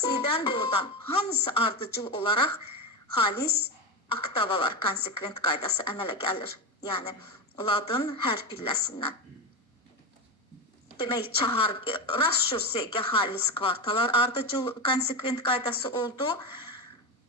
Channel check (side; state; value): both; normal; correlation 0.17